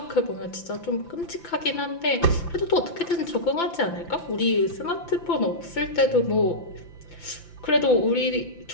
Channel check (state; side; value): late; right; 5.9 ms